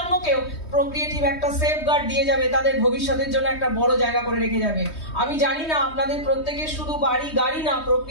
প্রোক্রিয়েটিভ একটা সেফগার্ড দিয়ে যাবে, তাদের ভবিষ্যতের জন্য একটা বড় জায়গা করে রেখে যাবে। আমি জানি না আপনাদের প্রত্যেকের শুধু বাড়ি গাড়ি না,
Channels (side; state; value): right; late; 3.2 ms